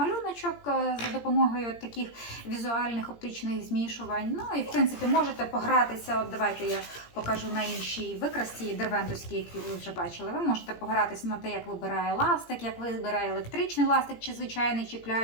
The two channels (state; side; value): late; right; 17 ms